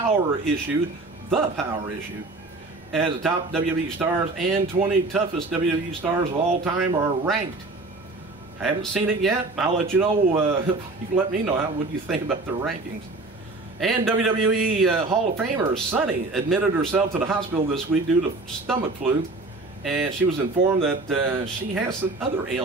Issue, the Power Issue, as the top WWE stars and 20 toughest WWE stars of all time are ranked. I haven't seen it yet. I'll let you know. You can let me know what you think about the rankings. And WWE Hall of Famer Sunny admitted herself to the hospital this week due to stomach flu, and she was informed that she has some other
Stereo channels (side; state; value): left; quieter; 3.3 dB